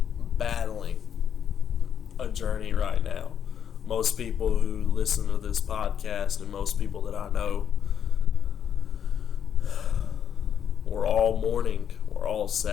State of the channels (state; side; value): quieter; right; 8.6 dB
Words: battling a journey right now. Most people who listen to this podcast and most people that I know, we're all mourning, we're all